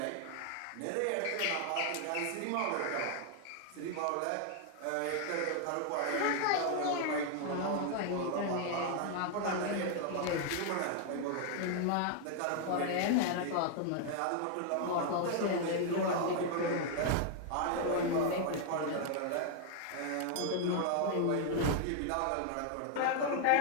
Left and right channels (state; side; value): different; both; correlation 0.00